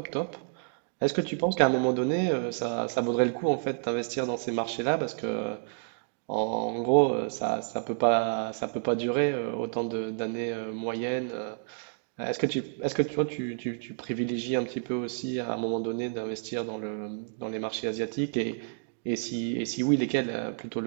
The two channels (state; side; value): silent; left; digital silence